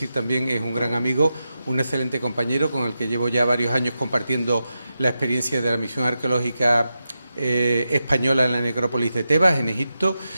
también, es un gran amigo, un excelente compañero con el que llevo ya varios años compartiendo la experiencia de la misión arqueológica española en la necrópolis de Tebas, en Egipto,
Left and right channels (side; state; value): both; inverted; correlation -0.89